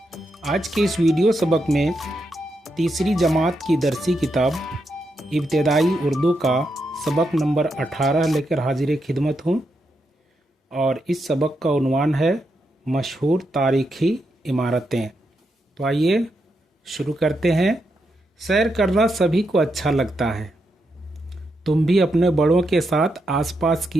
आज के इस वीडियो सबक में तीसरी जमात की दरसी किताब इब्तदाई उर्दू का सबक नंबर 18 लेकर हाजिर खिदमत हूँ और इस सबक का उन्वान है मशहूर तारीख़ी इमारतें। तो आइए शुरू करते हैं। सैर करना सभी को अच्छा लगता है। तुम भी अपने बड़ों के साथ आसपास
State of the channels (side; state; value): both; normal; correlation 0.83